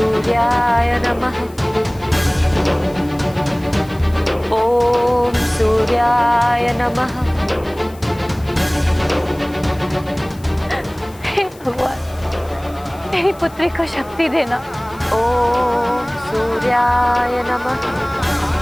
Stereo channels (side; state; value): left; noise; hiss, 24 dB below the sound